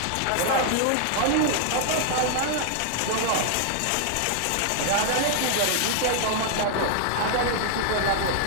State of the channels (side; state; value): both; different; correlation 0.00